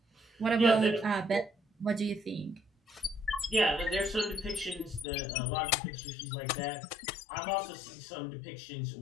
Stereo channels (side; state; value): right; drops out; at 5.1 s